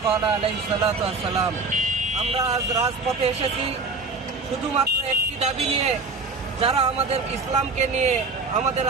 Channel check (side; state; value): left; quieter; 3.9 dB